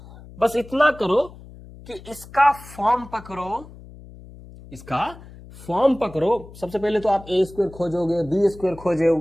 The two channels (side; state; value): left; noise; hum, 18 dB below the sound